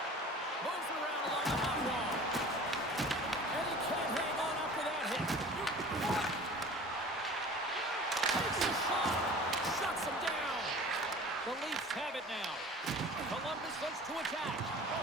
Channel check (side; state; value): both; normal; correlation 0.42